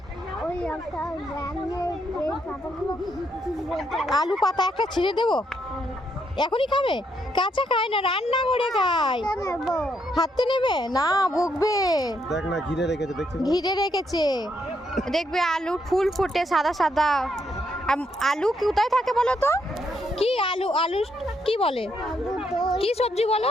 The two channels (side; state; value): both; normal; correlation 0.76